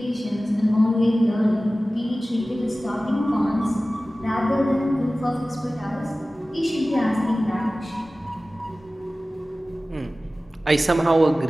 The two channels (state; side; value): normal; both; correlation 0.97